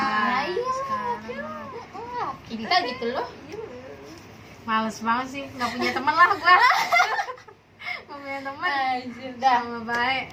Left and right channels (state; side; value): identical; both; correlation 1.00